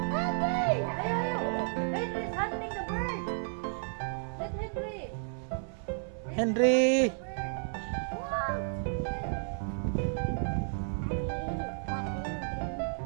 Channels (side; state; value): left; silent; 56 dB below the other